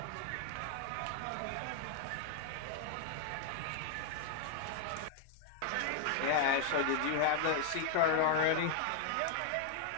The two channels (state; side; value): different; both; correlation 0.00